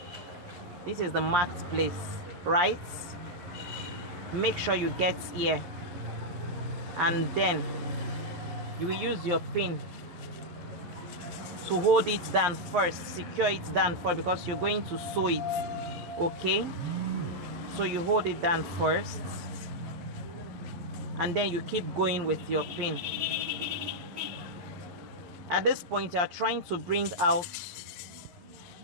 This is the marked place, right? Make sure you get here, and then you will use your pin to hold it down first, secure it down first, because you're going to sew it. Okay, so you hold it down first, and then you keep going with your pin. At this point, you are trying to bring out,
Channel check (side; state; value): left; late; 11 ms